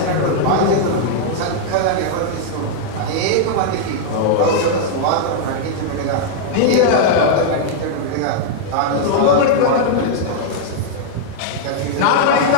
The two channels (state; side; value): different; both; correlation -0.01